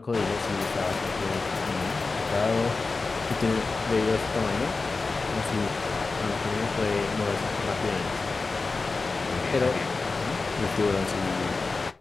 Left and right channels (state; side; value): quieter; right; 3.9 dB